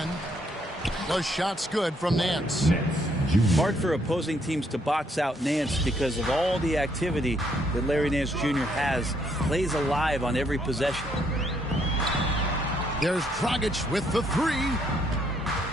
The shot's good from Nance. Hard for opposing teams to box out Nance because of all the activity that Larry Nance Jr. has. Plays alive on every possession. There's Dragic with the 3.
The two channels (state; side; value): normal; both; correlation 0.71